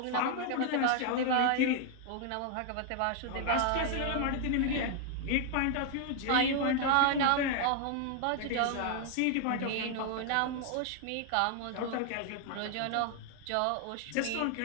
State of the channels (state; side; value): different; both; correlation 0.00